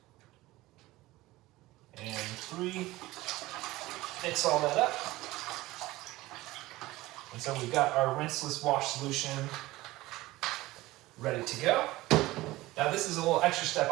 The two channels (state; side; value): quieter; left; 18.4 dB